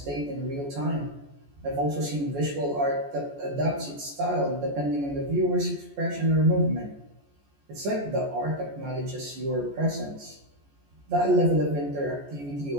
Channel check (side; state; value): left; late; 14 ms